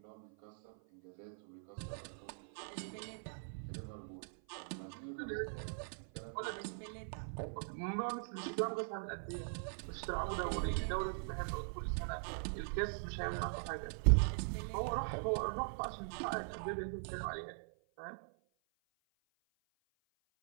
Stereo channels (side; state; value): left; silent; 50 dB below the other